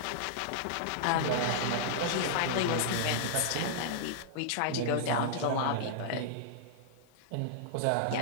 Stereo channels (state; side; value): different; both; correlation -0.01